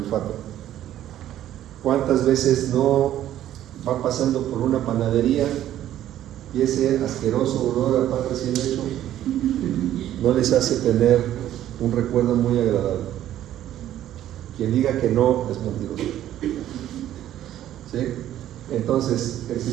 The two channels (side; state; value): left; quieter; 12.2 dB